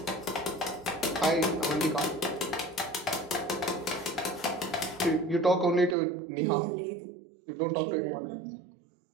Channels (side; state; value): left; drops out; at 6.0 s